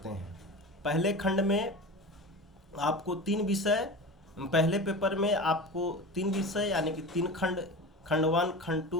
हैं। पहले खंड में आपको 3 विषय, पहले पेपर में आपको 3 विषय यानी कि 3 खंड, खंड 1, खंड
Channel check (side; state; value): both; normal; correlation 0.31